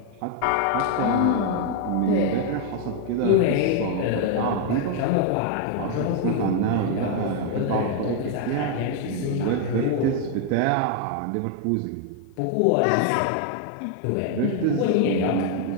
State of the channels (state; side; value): different; both; correlation 0.00